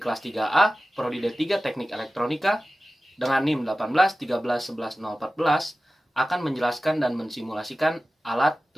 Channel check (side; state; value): both; normal; correlation 0.96